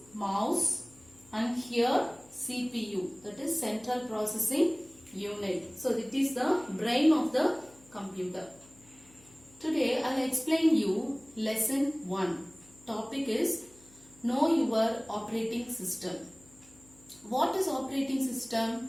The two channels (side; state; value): left; noise; hum, 26 dB below the sound